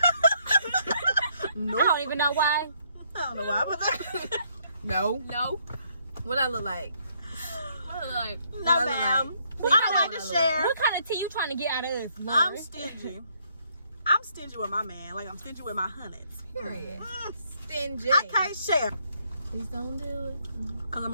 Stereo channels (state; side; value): inverted; both; correlation -0.70